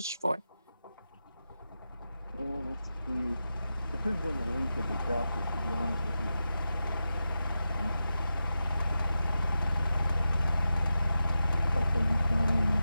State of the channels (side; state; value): both; inverted; correlation -0.90